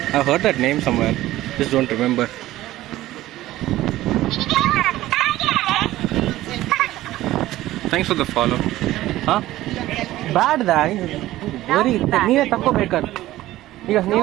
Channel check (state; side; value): quieter; left; 15.7 dB